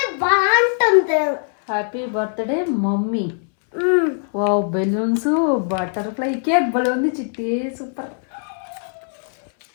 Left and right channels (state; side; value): silent; right; 65 dB below the other